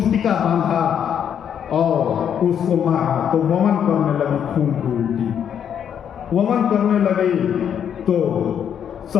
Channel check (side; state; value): right; quieter; 8.6 dB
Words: बांधा और उसको मारा, तो वमन करने लगी खून की उल्टी, वमन करने लगी तो